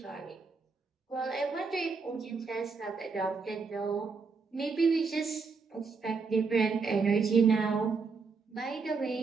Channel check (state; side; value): quieter; left; 4.8 dB